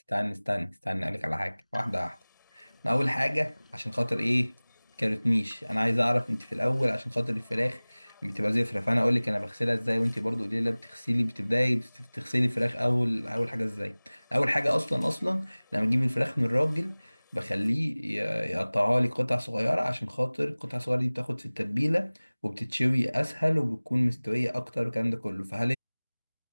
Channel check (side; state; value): both; inverted; correlation -1.00